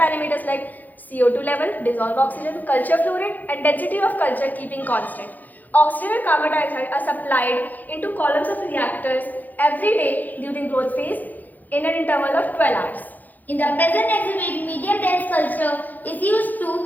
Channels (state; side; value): late; right; 0.083 ms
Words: like CO2 level, dissolved oxygen, culture flow rate and density of culture keeping constant. Oxygen and carbon dioxide are supplied into columns of reactors every day during growth phase in an interval of 12 hours. In the present exhibit, medium dense culture is used